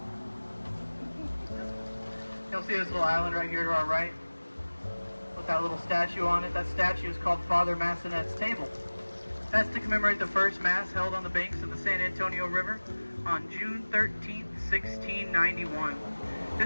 You'll see this little island right here to our right with that little statue on it. That statue is called Father Massenet's Table. That's to commemorate the first Mass held on the banks of the San Antonio River on June 13th, 1691.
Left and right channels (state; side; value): inverted; both; correlation -1.00